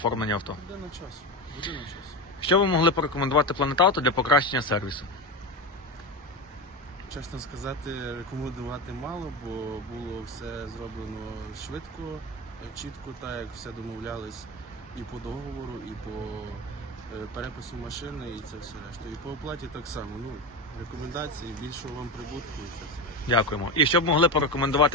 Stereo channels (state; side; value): normal; both; correlation 0.19